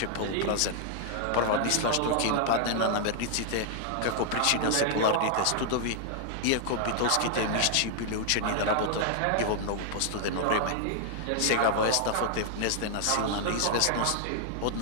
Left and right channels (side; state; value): both; different; correlation -0.01